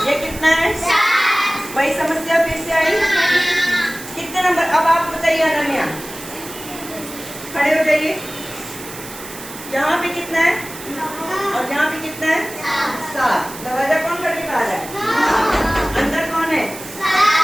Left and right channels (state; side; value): noise; right; hiss, 13 dB below the sound